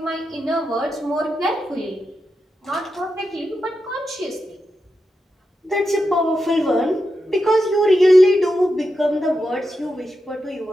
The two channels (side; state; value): both; normal; correlation 0.88